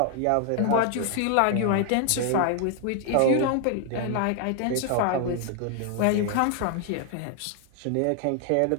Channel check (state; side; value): different; both; correlation 0.00